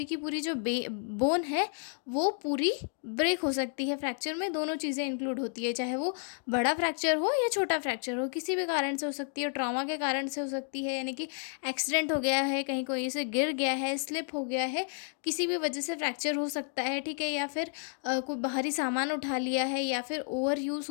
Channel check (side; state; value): right; silent; 57 dB below the other